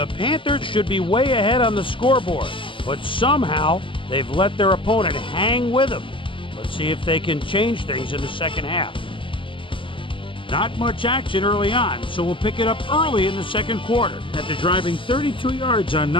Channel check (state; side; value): late; right; 0.25 ms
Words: Panthers should be way ahead on the scoreboard, but somehow they've let their opponent hang with them. Let's see if they can change things in the second half. Not much action early on, so we'll pick it up early in the second quarter. After driving 32 yards on